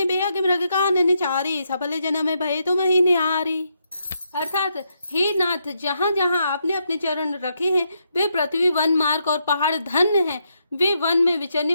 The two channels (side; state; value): both; inverted; correlation -0.79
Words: बेअग मृग कानन चारी, सफल जन्म भय तुम ही निहारी। अर्थात हे नाथ, जहाँ जहाँ आपने अपने चरण रखे हैं वे पृथ्वी, वन, मार्ग और पहाड़ धन्य हैं। वे वन में